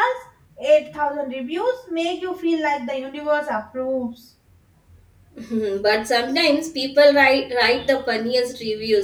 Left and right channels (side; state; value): both; identical; correlation 1.00